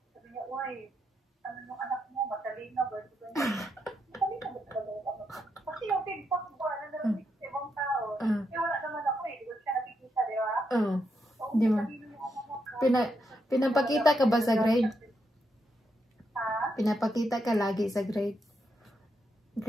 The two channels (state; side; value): normal; both; correlation 0.81